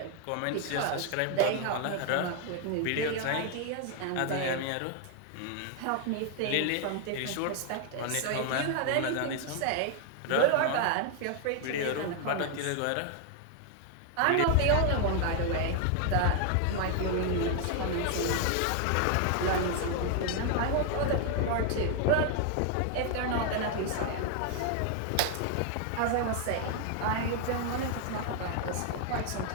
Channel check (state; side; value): different; both; correlation 0.00